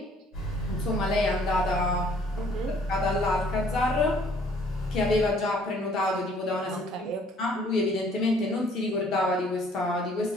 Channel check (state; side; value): normal; both; correlation 0.60